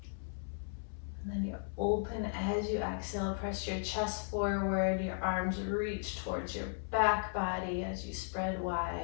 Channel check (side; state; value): right; silent; 54 dB below the other